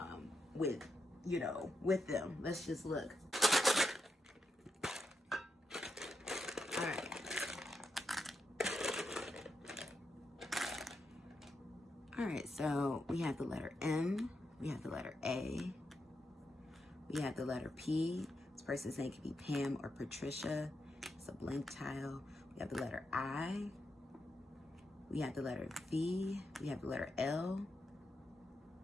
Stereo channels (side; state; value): both; normal; correlation 0.84